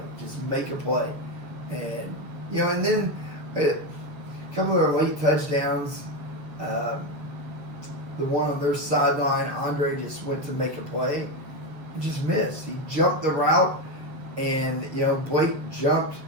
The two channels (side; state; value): left; late; 6.9 ms